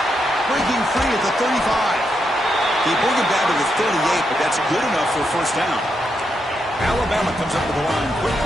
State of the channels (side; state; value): both; normal; correlation 0.82